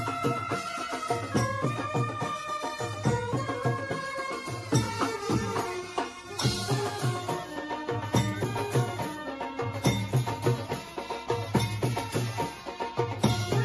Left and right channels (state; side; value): identical; both; correlation 1.00